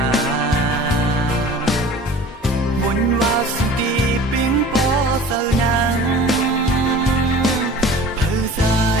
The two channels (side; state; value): both; normal; correlation 0.43